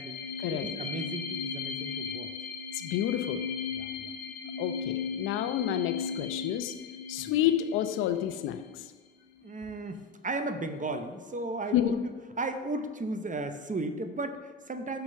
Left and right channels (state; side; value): quieter; right; 5.3 dB